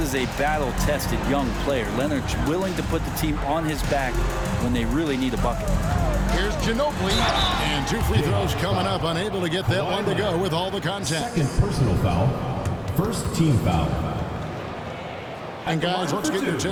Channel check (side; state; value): both; identical; correlation 1.00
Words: a battle-tested young player. Leonard's willing to put the team on his back when they really need a bucket. Here's Ginobili. And 2 free throws coming up. Unable to get that one to go with all the contact. second personal foul. First team foul. And guys, let's get your